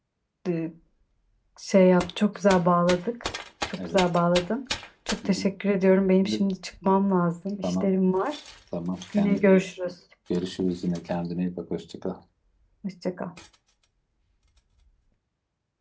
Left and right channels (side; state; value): both; identical; correlation 1.00